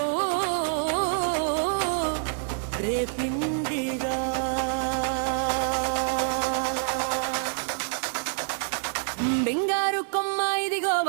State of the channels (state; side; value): silent; left; digital silence